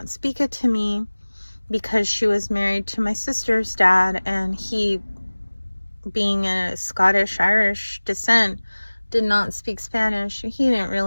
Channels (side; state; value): both; inverted; correlation -1.00